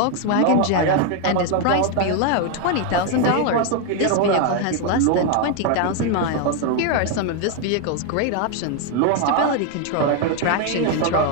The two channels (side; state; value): both; different; correlation 0.01